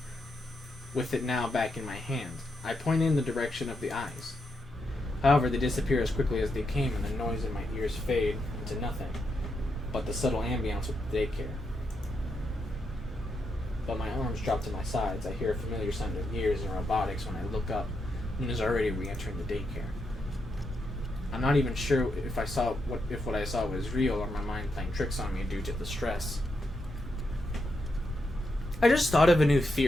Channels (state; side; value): normal; both; correlation 0.83